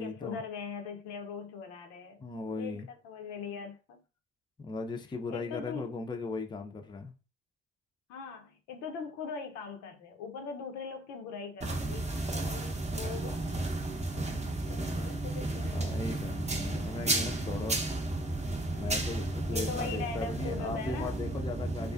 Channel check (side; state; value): both; normal; correlation 0.58